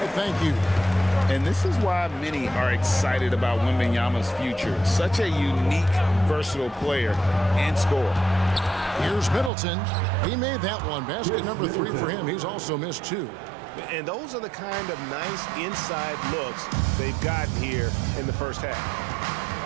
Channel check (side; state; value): left; drops out; at 9.5 s